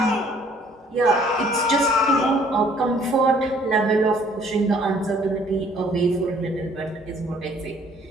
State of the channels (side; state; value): both; normal; correlation 0.59